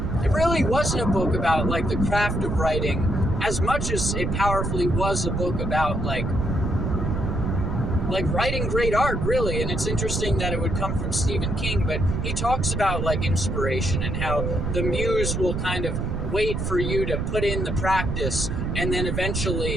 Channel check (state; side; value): noise; right; rumble, 1 dB below the sound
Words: wasn't a book about, like, the craft of writing, as much as it powerfully was a book about, like writing great art, really. And it's interesting that it would come from Stephen King, but he talks about, like, inspiration and how the muse will kind of wait for you to put in the practice, and then